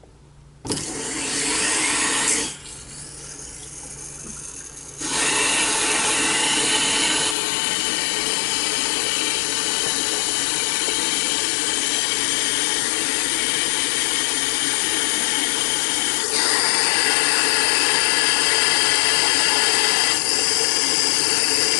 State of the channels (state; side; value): drops out; right; at 7.4 s